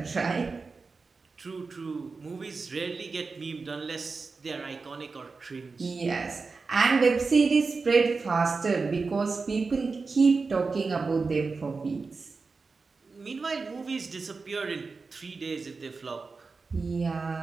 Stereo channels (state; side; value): quieter; left; 4.3 dB